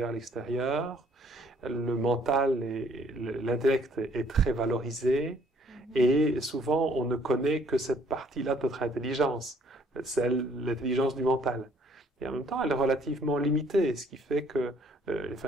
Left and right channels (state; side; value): normal; both; correlation 0.62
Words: l'extérieur. Le mental et l'intellect est très valorisé. Et souvent, on ne connaît que cette partie-là de notre intelligence. l'intelligence du mental. Et en même temps, elle est relativement limitée, ce qui fait que,